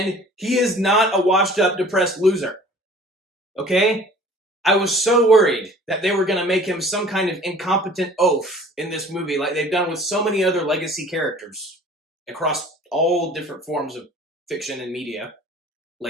he is not a washed-up, depressed loser. Okay? I was so worried that they were going to make him some kind of incompetent oaf in this movie, like they've done with so many other legacy characters across all different forms of fiction and media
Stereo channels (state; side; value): normal; both; correlation 0.48